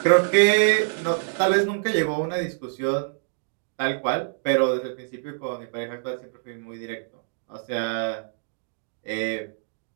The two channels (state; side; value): silent; left; digital silence